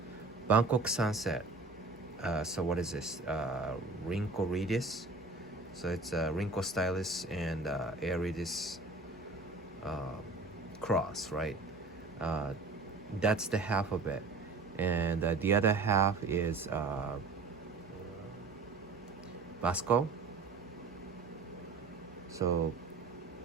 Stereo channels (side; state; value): left; quieter; 3.7 dB